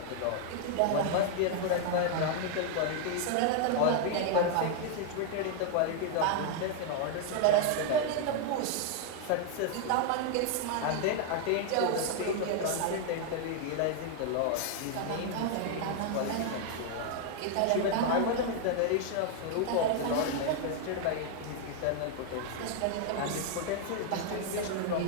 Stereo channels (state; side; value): different; both; correlation 0.00